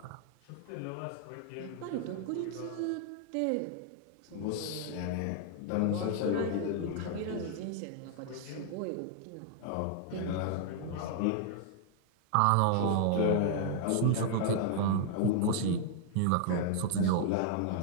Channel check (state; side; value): different; both; correlation -0.01